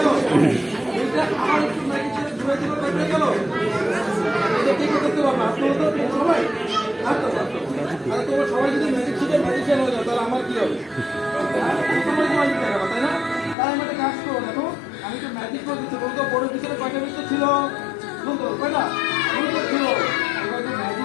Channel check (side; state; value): right; drops out; at 13.6 s